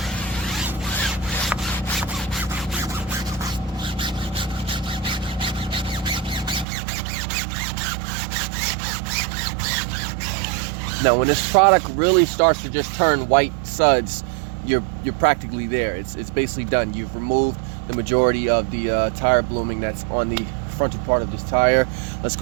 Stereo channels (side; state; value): left; drops out; at 6.7 s